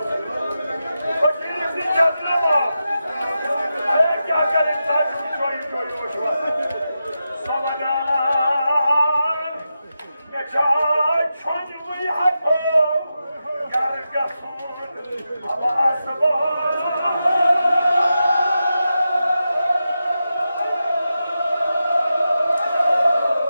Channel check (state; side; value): inverted; both; correlation -0.89